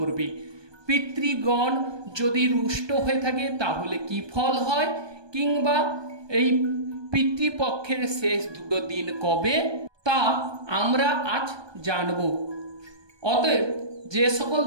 পিতৃগণ যদি রুষ্ট হয়ে থাকে তাহলে কি ফল হয়, কিংবা এই পিতৃপক্ষের শেষ দুটো দিন কবে, তা আমরা আজ জানব। অতএব যে সকল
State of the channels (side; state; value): left; late; 1.2 ms